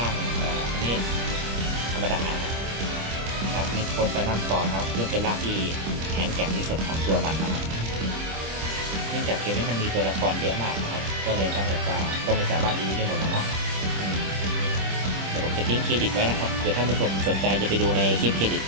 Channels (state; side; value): late; left; 26 ms